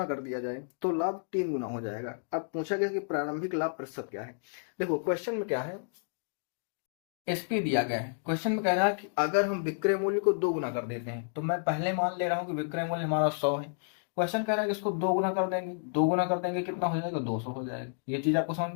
कर दिया जाए तो लाभ 3 गुना हो जाएगा। अब पूछा गया कि प्रारंभिक लाभ प्रतिशत क्या है। देखो क्वेश्चन में क्या है, एसपी दिया गया है। क्वेश्चन में कह रहा है कि अगर हम विक्रय मूल्य को 2 गुना कर देते हैं, तो मैं पहले मान ले रहा हूं कि विक्रय मूल्य हमारा 100 है। क्वेश्चन कह रहा है कि इसको 2 गुना कर देंगे। 2 गुना कर देंगे कितना हो जाएगा, 200 हो जाएगा। ये चीज आपको समझ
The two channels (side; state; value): right; silent; digital silence